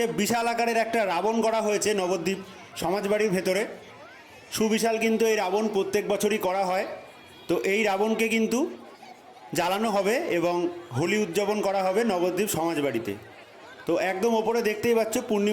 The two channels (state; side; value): identical; both; correlation 1.00